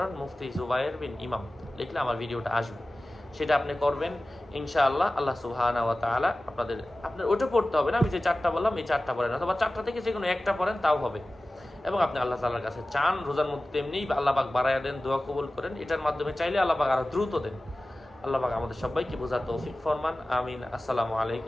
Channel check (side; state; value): both; normal; correlation 0.96